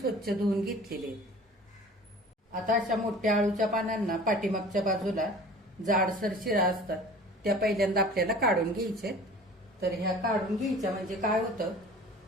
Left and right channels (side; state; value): both; normal; correlation 0.43